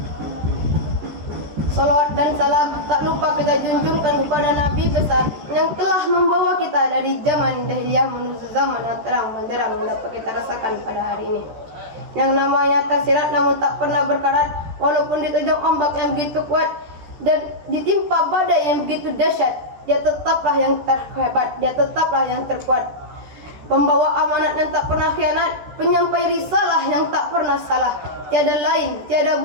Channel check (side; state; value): left; late; 14 ms